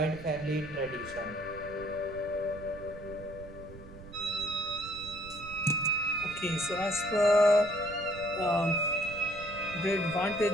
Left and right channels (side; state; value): right; noise; rumble, 16 dB below the sound